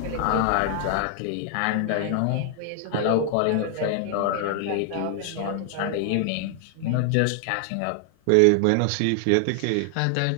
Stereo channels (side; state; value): both; different; correlation 0.00